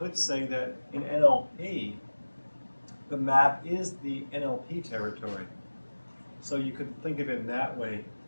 say that in NLP, the map is the NLP territory. So you could think of it in that way,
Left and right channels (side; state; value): both; inverted; correlation -1.00